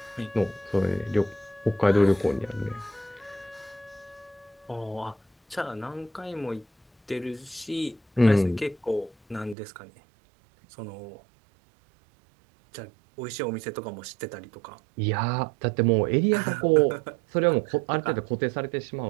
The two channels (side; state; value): left; drops out; at 9.6 s